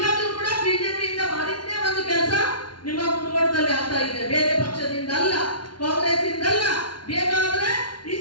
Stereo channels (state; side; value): late; right; 0.71 ms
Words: ಕೂಡ ಬಿಜೆಪಿಯಿಂದ ಮಾಡಿದ್ದೇ ಒಂದು ಕೆಲಸ ನಿಮ್ಮ ಮುನಗೋಡದಲ್ಲಿ ಆಗ್ತಾ ಇದೆ. ಬೇರೆ ಪಕ್ಷದಿಂದ ಅಲ್ಲ, ಕಾಂಗ್ರೆಸ್ ಇಂದಲ್ಲ. ಬೇಕಾದ್ರೆ